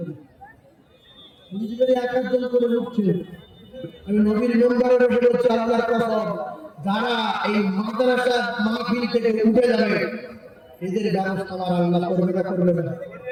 বুঝি করে এক একজন করে উঠছে। আমি নবীর মেম্বারে বসে বলছি, আল্লাহর কসম, যারা এই মাদ্রাসার মাহফিল থেকে উঠে যাবে, এদের ব্যবস্থা আমার আল্লাহ করবে না, করবে না।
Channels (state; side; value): identical; both; correlation 1.00